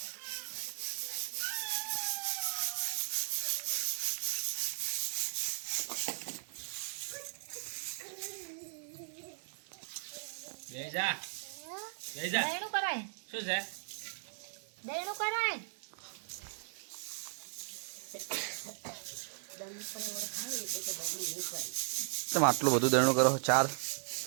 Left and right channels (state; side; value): silent; left; 53 dB below the other